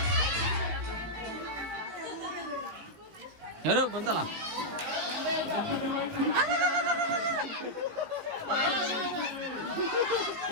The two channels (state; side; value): late; left; 19 ms